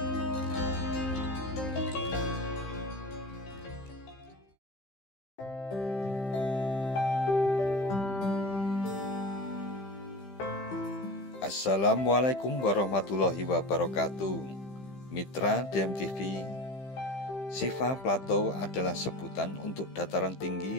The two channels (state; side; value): late; right; 15 ms